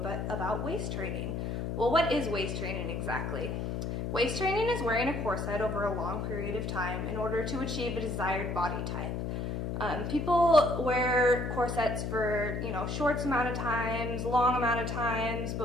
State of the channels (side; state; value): left; noise; hum, 2 dB below the sound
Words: about waist training. Well, what is waist training exactly? Waist training is wearing a corset over a long period of time in order to achieve a desired body type. People wear corsets for, short amount of times, long amount of times,